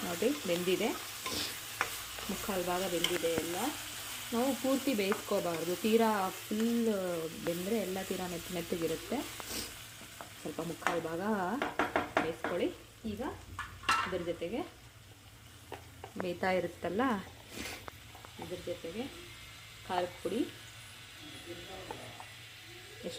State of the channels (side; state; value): both; identical; correlation 1.00